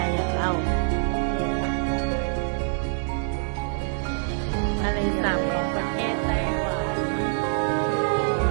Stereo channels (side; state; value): left; silent; digital silence